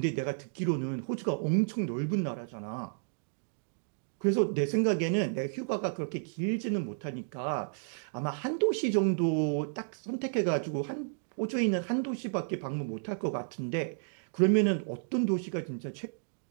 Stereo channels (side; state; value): left; silent; digital silence